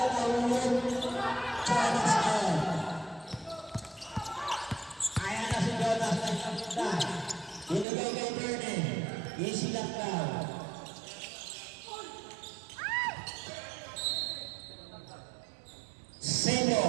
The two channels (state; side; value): drops out; left; at 7.9 s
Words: Jonas N. Ayan na si Jonas. Binigay kay Bernie. Easy lang daw.